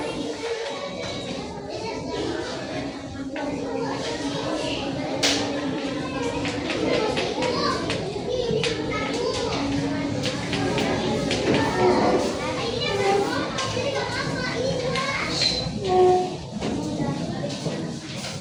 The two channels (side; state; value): both; identical; correlation 1.00